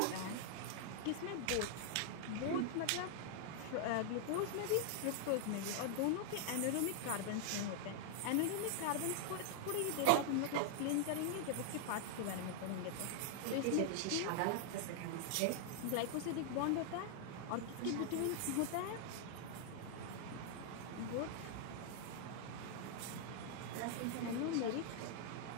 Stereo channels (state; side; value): different; both; correlation 0.00